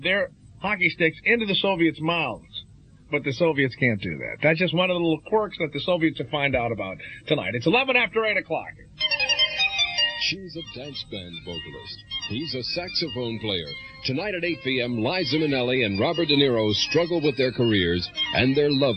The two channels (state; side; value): identical; both; correlation 1.00